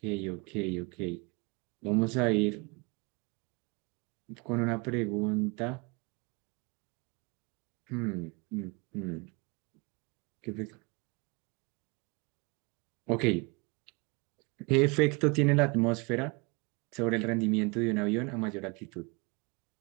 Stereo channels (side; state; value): left; quieter; 29.4 dB